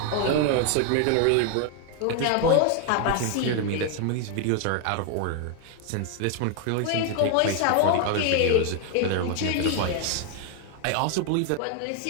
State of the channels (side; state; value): both; different; correlation 0.00